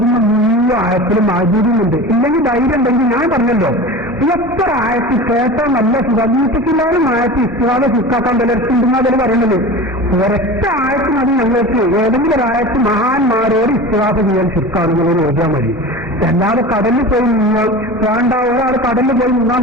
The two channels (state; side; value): normal; both; correlation 0.33